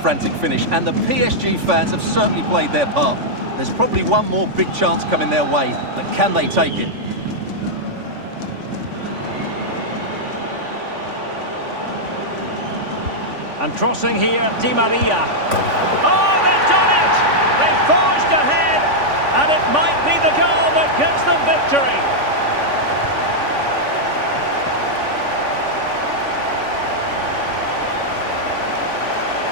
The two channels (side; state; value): left; late; 3.5 ms